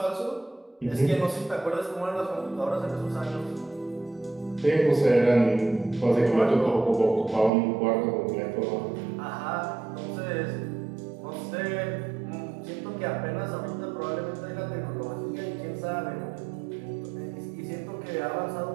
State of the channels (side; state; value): left; drops out; at 7.5 s